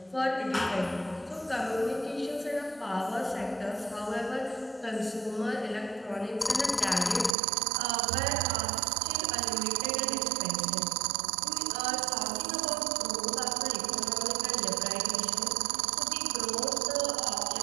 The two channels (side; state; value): left; drops out; at 7.3 s